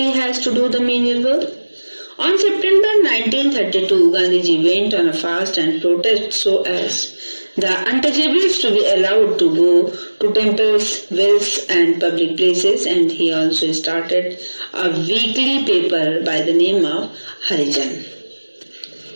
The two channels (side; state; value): both; inverted; correlation -1.00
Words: has to do the menial work. On September 1932, Gandhiji went on a fast and protest so as the untouchables to be allowed to go to temples, wells and public places, and he also started a weekly paper by the name of Harijan.